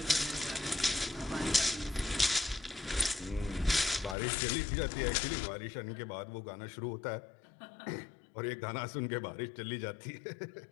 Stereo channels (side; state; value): right; drops out; at 4.2 s